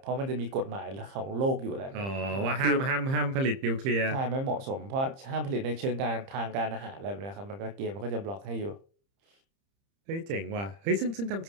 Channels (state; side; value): late; left; 30 ms